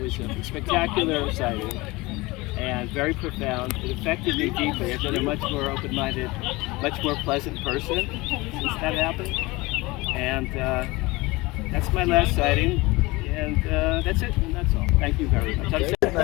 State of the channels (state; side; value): quieter; right; 22.4 dB